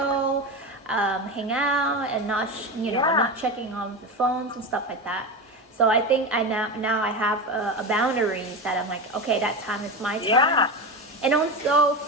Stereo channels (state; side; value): normal; both; correlation 0.20